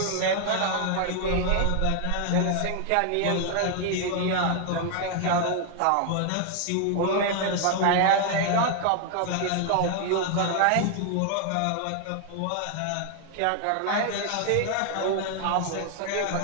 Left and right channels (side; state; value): both; different; correlation 0.00